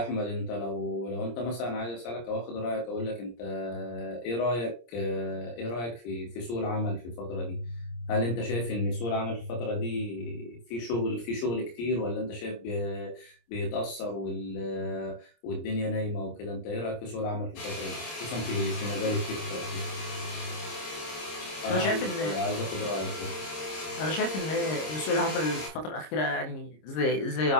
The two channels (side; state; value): right; late; 26 ms